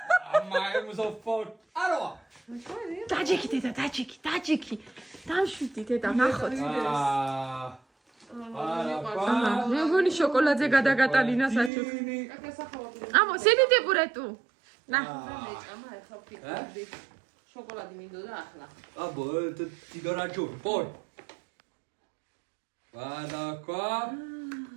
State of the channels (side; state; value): left; drops out; at 11.7 s